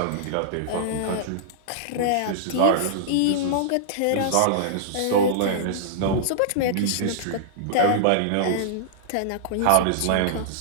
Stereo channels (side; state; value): both; different; correlation -0.02